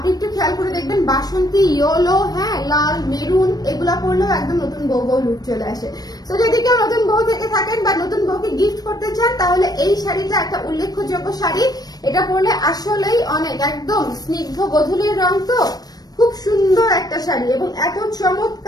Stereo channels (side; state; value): right; late; 0.19 ms